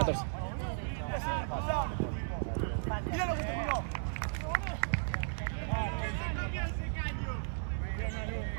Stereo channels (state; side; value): silent; left; 54 dB below the other